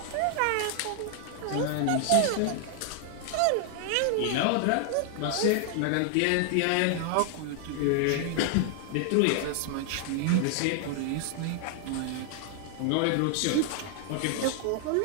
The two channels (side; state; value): both; different; correlation 0.00